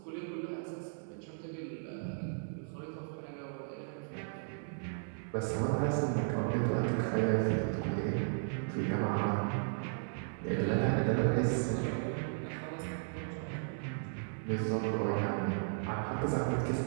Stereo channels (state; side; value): silent; left; 54 dB below the other